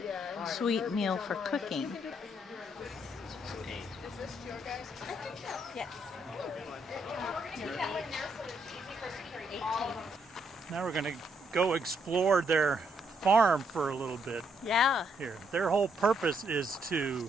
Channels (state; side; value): normal; both; correlation 0.74